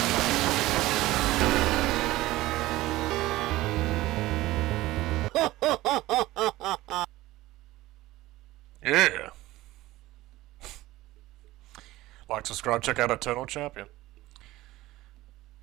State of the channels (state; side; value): quieter; left; 17.5 dB